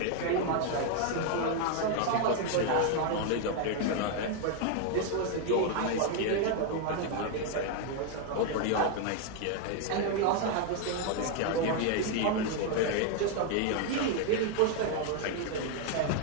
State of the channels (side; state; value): both; different; correlation 0.01